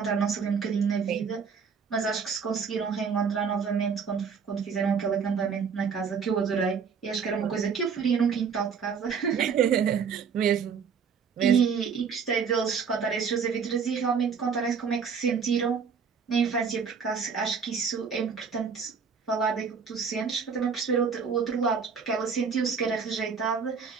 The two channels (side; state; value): left; quieter; 6.2 dB